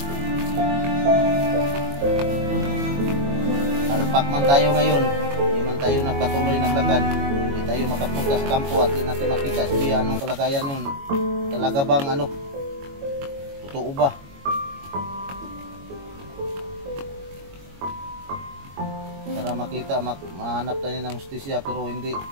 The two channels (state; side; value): late; left; 22 ms